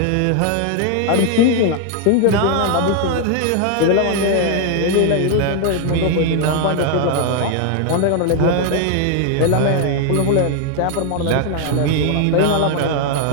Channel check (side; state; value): both; different; correlation 0.00